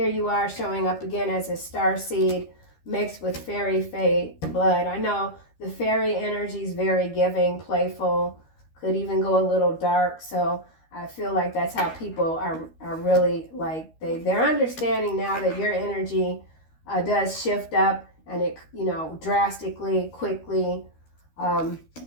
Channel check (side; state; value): right; late; 13 ms